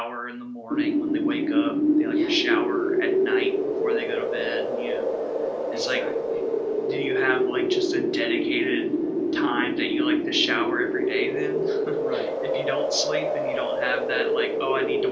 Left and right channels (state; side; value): identical; both; correlation 1.00